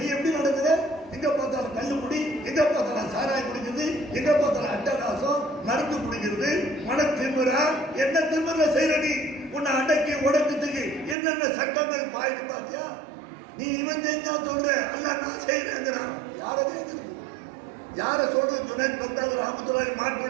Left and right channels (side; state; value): left; drops out; at 11.2 s